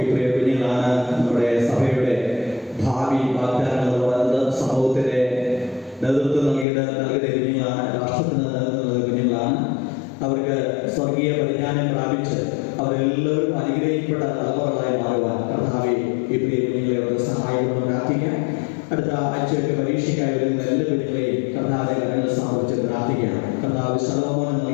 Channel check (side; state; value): right; drops out; at 6.7 s